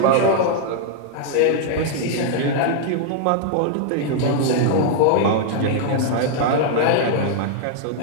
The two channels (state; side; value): different; both; correlation -0.01